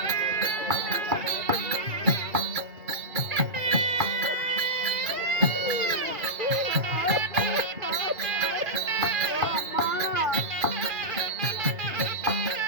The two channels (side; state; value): left; late; 2.3 ms